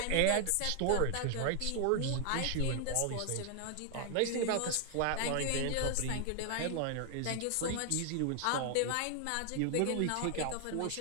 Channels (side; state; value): both; different; correlation 0.00